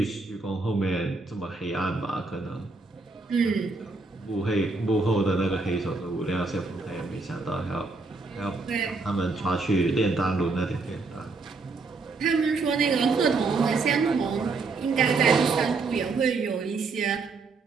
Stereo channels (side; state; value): left; quieter; 3.9 dB